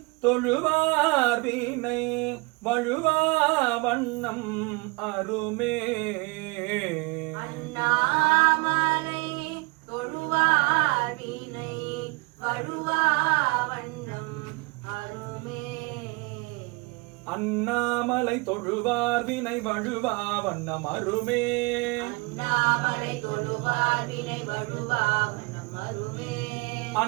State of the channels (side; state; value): left; quieter; 26.9 dB